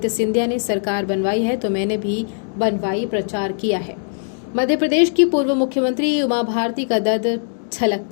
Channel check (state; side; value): silent; right; digital silence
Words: सिंधिया ने सरकार बनवाई है तो मैंने भी बनवाई प्रचार किया है। मध्य प्रदेश की पूर्व मुख्यमंत्री उमा भारती का दर्द छलक